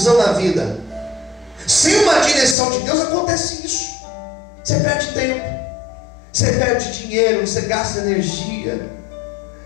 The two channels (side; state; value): right; drops out; at 2.6 s